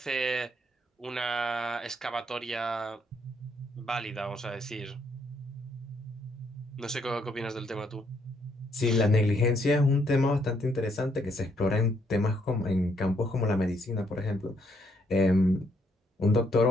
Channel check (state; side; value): normal; both; correlation 0.72